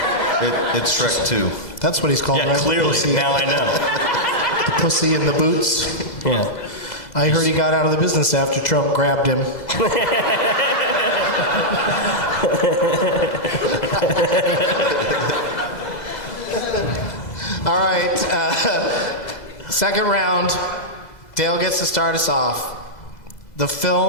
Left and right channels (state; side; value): late; right; 2.0 ms